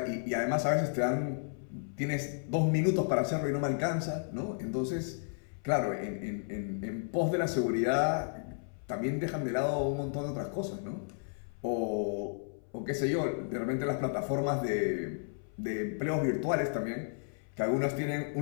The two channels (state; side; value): silent; right; 56 dB below the other